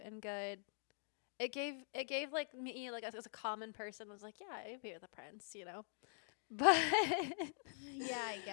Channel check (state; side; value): silent; right; digital silence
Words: and good. It gave like me, like as a common person, was like, yeah, I'd be with the prince, you know. But yeah, I